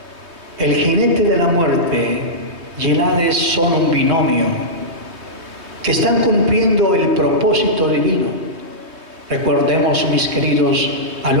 el jinete de la muerte y el Hades son un binomio que están cumpliendo el propósito divino. Recordemos, mis queridos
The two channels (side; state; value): left; late; 3.2 ms